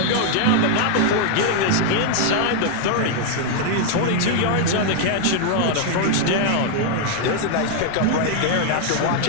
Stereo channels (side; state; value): both; different; correlation 0.00